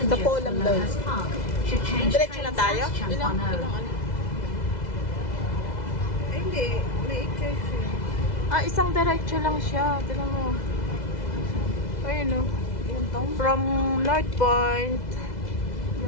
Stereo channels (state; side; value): late; right; 2.0 ms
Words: from Lohas Park should change Diretso na trains tayo? at Champanao. Hindi, may i-change. Isang diretso lang siya. Tignan mo. Ayun o. From North Point,